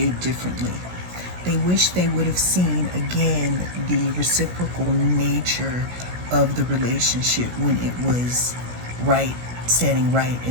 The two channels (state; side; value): late; left; 17 ms